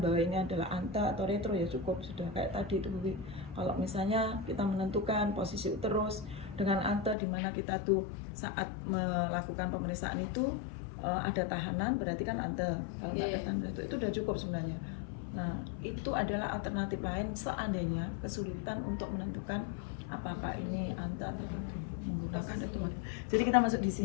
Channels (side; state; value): right; drops out; at 7.2 s